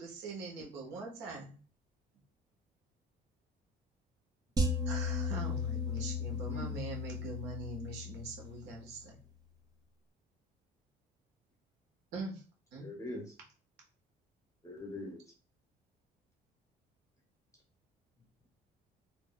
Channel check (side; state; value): both; normal; correlation 0.27